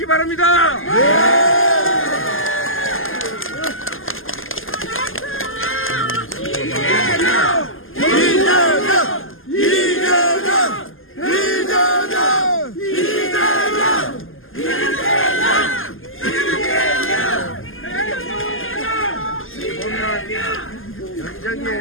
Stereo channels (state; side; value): late; right; 0.59 ms